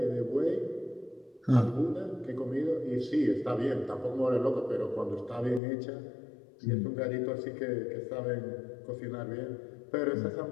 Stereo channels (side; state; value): right; drops out; at 5.6 s